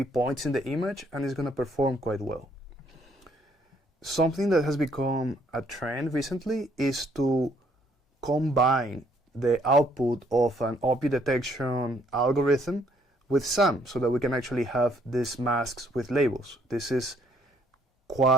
points in the image, and is going to perform quite well. Something that has become a trend recently is to combine the output of an object detection algorithm with SAM so that we can actually have these masks with labels. This is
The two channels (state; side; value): normal; both; correlation 0.67